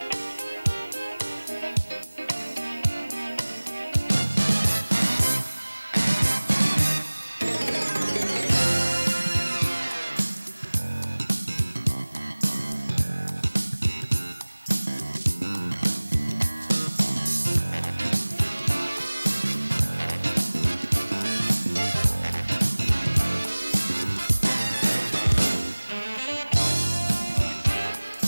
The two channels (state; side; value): inverted; both; correlation -0.99